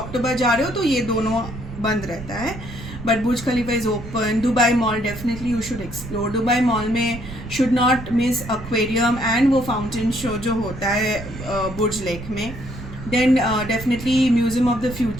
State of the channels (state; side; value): noise; right; rumble, 12 dB below the sound